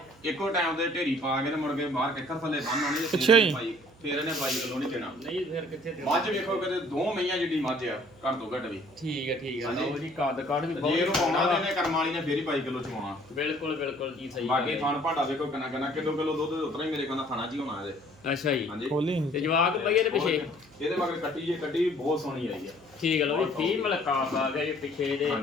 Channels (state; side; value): noise; right; hum, 27 dB below the sound